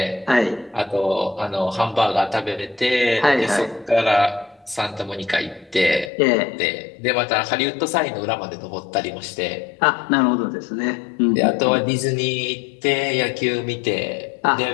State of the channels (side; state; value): right; drops out; at 6.1 s